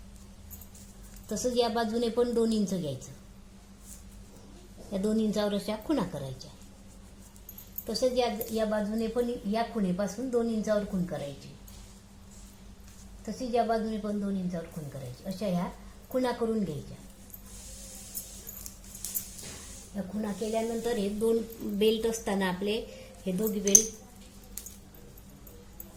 तसंच या बाजूने पण 2 इंच घ्यायचं. या 2 इंचावर अशा खुणा करायच्या. तसंच या बाजूने पण या खुणेपासून 2 इंचावर खूण करायची. तसेच या बाजूने पण 2 इंचावर खूण करायची. अशा ह्या खुणा करून घ्यायच्या. या खुणा केल्यानंतर हे 2 बेल्ट असताना आपले हे दोघी बेल्ट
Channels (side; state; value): both; identical; correlation 1.00